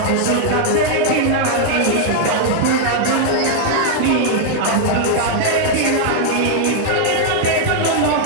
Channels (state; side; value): different; both; correlation -0.01